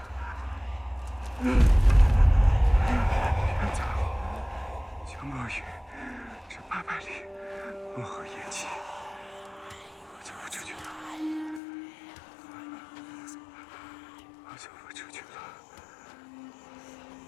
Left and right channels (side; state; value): right; drops out; at 11.6 s